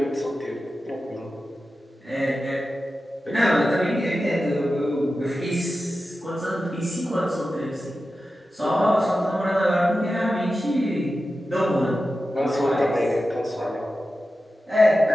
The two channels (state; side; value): normal; both; correlation 0.93